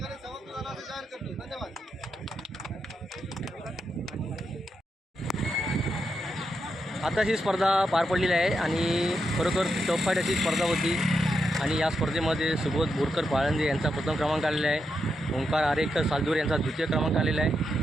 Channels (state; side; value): normal; both; correlation 0.84